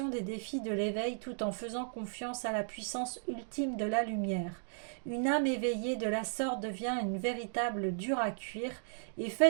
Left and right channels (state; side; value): silent; left; digital silence